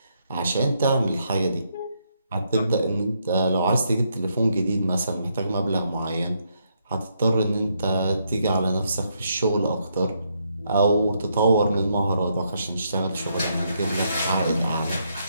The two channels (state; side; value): inverted; both; correlation -0.76